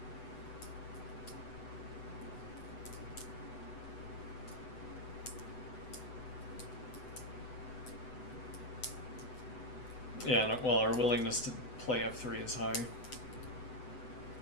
Yeah, well, our willingness to play f3 is high.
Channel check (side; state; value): right; late; 8.0 ms